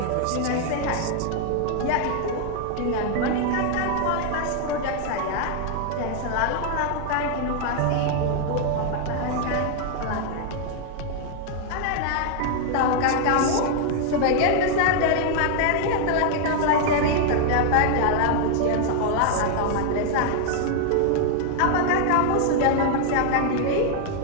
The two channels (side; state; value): both; different; correlation 0.00